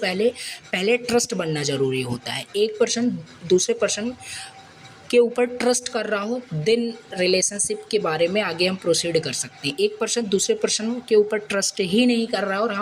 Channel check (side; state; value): both; identical; correlation 1.00